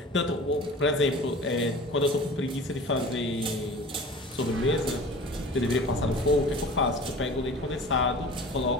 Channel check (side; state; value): both; normal; correlation 0.40